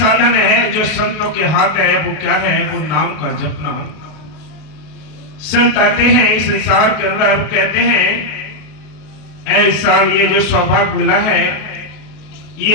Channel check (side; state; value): right; late; 32 ms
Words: है जो संतों के हाथ है, वो क्या है? वो नाम का जपना। संत आते हैं इस संसार के अंदर, कहते हैं ऐसा ये जो सौभाग्य मिला है,